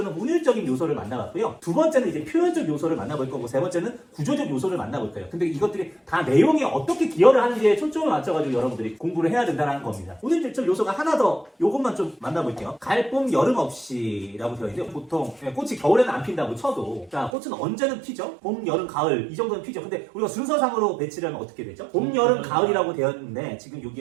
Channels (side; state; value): left; drops out; at 17.3 s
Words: 운율적인 요소를 만나봤고요. 두 번째는 이제 표현적 요소를 만나볼 거고 세 번째는 구조적 요소를 만나볼 거예요. 근데 이것들이 다 내용에 어떻게 기여를 하는지에 초점을 맞춰가지고 여러분들이 공부를 해야 된다는 겁니다. 운율적 요소가 하나 더 요것만 좀 만나볼게요. 갈봄 여름 없이라고 되어 있는데 보통 꽃이 겨울에는 안 핀다고 쳐도 자 꽃은 언제는 피죠? 봄, 여름, 가을 이 정도는 피죠. 근데 우리가 순서상으로 배치를 하면 어떻게 되죠? 봄, 여름, 가을이라고 되어 있는데 지금